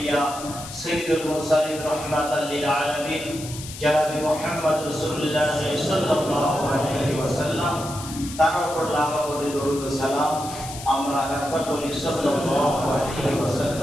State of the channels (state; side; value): noise; left; hiss, 12 dB below the sound